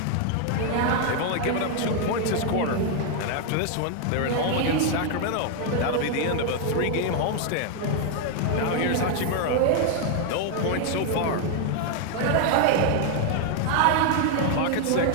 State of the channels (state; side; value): different; both; correlation 0.00